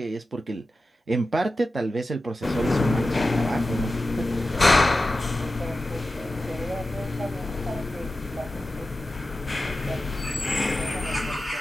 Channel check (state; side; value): normal; both; correlation 0.93